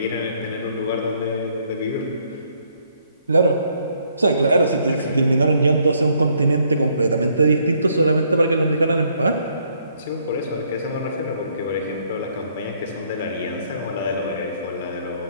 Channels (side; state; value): both; inverted; correlation -0.68